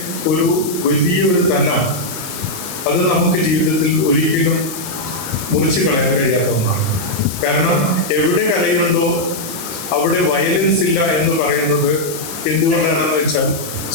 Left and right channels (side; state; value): left; noise; hiss, 10 dB below the sound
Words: ഒരു വലിയൊരു തലം അത് നമുക്ക് ജീവിതത്തിൽ ഒരിക്കലും മുറിച്ച് കളയാൻ കഴിയാത്ത ഒന്നാണ്. കാരണം എവിടെ കലയുണ്ടോ അവിടെ വയലൻസ് ഇല്ല എന്ന് പറയുന്നത് എന്തുകൊണ്ടാണെന്ന് വെച്ചാൽ